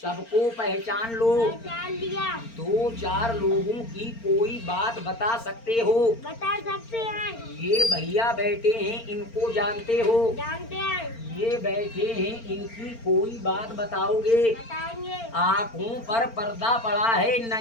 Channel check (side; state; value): right; late; 4.4 ms